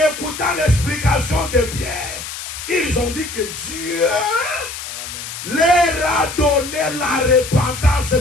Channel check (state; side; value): noise; left; hiss, 9 dB below the sound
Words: écoutant l'explication de Pierre, ils ont dit que Dieu Amen. leur a donné la repentance